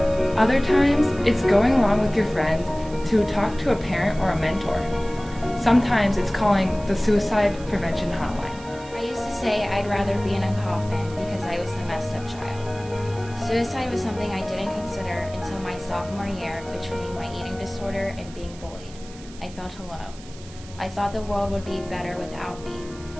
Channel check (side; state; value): right; noise; hiss, 20 dB below the sound